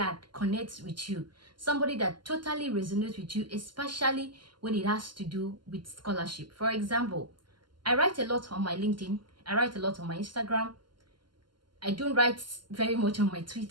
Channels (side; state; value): left; late; 0.71 ms